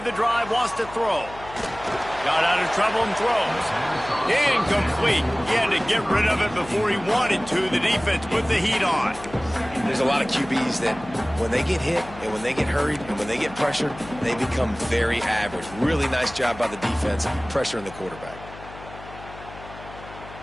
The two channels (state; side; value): noise; left; hum, 16 dB below the sound